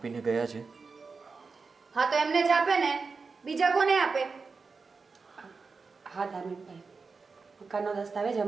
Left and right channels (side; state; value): left; quieter; 4.6 dB